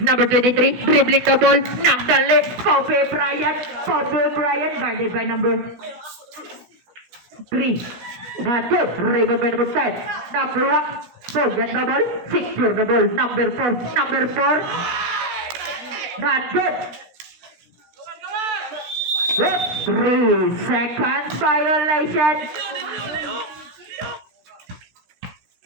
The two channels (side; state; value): left; late; 16 ms